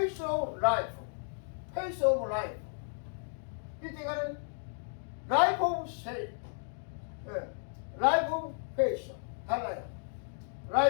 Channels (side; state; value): right; silent; digital silence